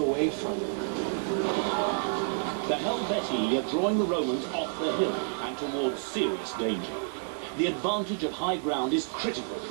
from them. The Helvetii are drawing the Romans off the hill and towards serious danger. The advantage of high ground is critical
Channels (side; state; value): left; silent; digital silence